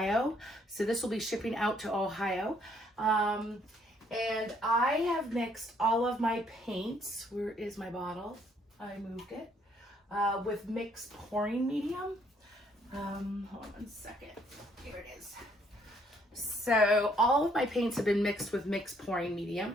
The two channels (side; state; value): both; normal; correlation 0.67